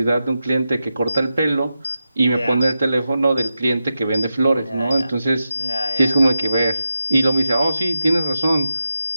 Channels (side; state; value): both; inverted; correlation -0.90